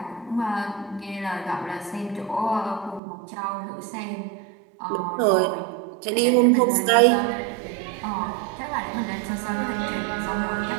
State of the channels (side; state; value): left; drops out; at 3.0 s